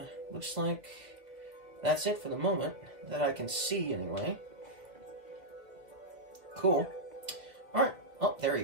looks like that's it for the moment that I can see anyway. Cool. Alright. Oh, there he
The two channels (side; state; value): left; late; 2.5 ms